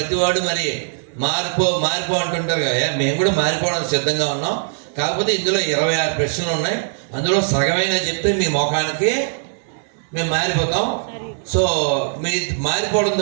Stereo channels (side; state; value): left; silent; digital silence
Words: మరి మారిపో అంటుంటారు కదా. మేము కూడా మారిపోవడానికి సిద్ధంగా ఉన్నాం. కాకపోతే ఇందులో 26 ప్రశ్నలు ఉన్నాయి. అందులో సగమైన చెప్తే మీ ముఖానికి మేము మారిపోతాం. సో మీ